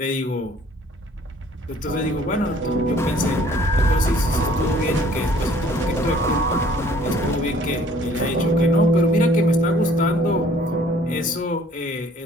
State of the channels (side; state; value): both; normal; correlation 0.57